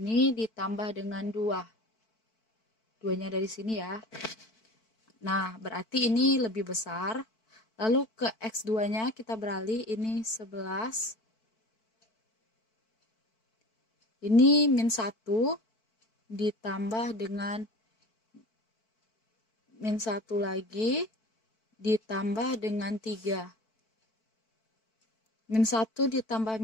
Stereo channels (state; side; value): late; right; 4.5 ms